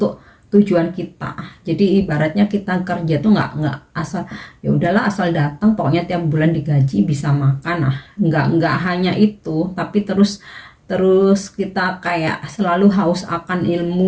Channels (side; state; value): both; identical; correlation 1.00